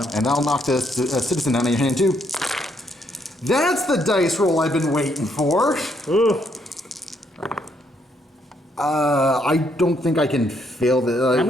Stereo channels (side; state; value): both; normal; correlation 0.73